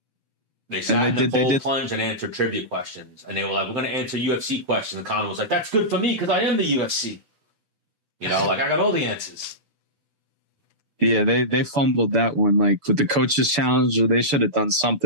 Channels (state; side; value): late; left; 6.9 ms